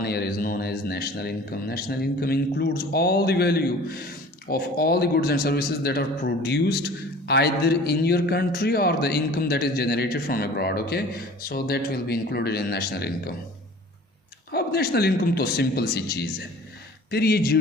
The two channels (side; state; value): both; normal; correlation 0.45